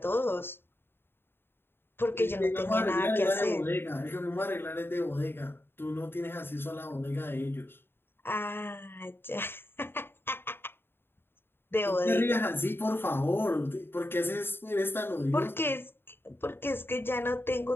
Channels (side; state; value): right; late; 0.11 ms